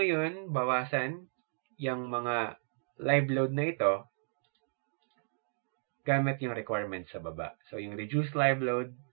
bawasan yung mga live load na ito gamit yung requirements sa baba. So yung reduced live load,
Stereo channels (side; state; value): left; silent; digital silence